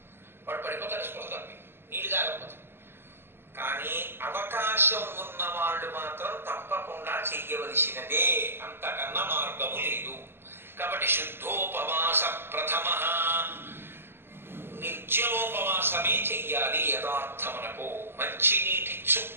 వాడు పడిపోతాడు స్పృహ తప్పి, నీళ్ళు తాగకపోతే. కానీ అవకాశం ఉన్న వాళ్ళు మాత్రం తప్పకుండా చెయ్యవలసినదే, అంతకన్నా మార్గము లేదు. కాబట్టి శుద్ధోపవాస ప్రథమ నిర్జలోపవాసమే చెయ్యాలి. యథార్థమునకు మంచినీటి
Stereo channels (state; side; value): late; left; 0.11 ms